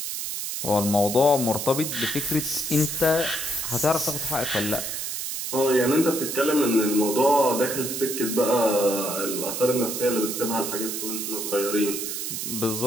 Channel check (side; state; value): right; noise; hiss, 4 dB below the sound